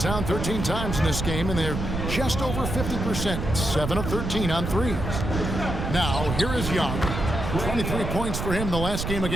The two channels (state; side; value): noise; right; rumble, 3 dB below the sound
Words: 13 times in this game, and they're just over 50%. 7 of 13 on 3s. Now, here is Young. 23 points for him the last game